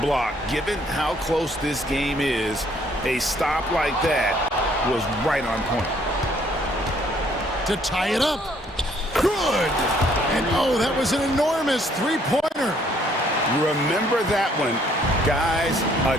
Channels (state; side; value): normal; both; correlation 0.64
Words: block. Given how close this game is, a stop like that was right on point. To tie it up. Good. And oh, that was an enormous three-pointer. Remember that one. Guys, a